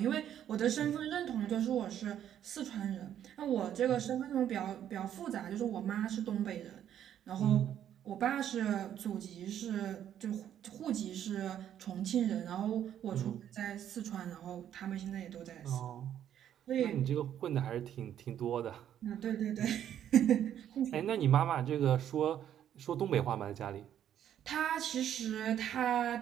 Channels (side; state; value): left; quieter; 10.3 dB